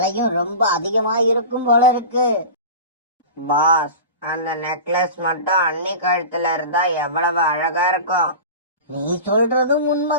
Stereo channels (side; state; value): both; inverted; correlation -0.32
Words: ரொம்ப அதிகமா இருக்கும் போல இருக்கு. பாஸ், அந்த நெக்லஸ் மட்டும் அண்ணி கழுத்துல இருந்தா எவ்வளவு அழகா இருக்கும். நீ சொல்றதும்